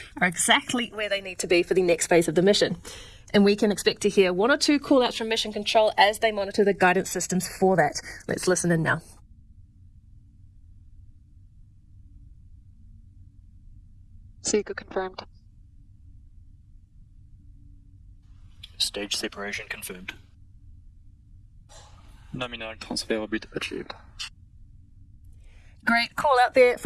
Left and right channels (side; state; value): both; identical; correlation 1.00